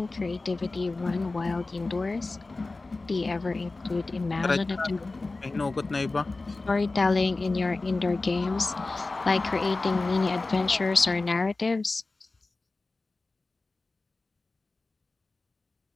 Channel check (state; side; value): quieter; right; 3.4 dB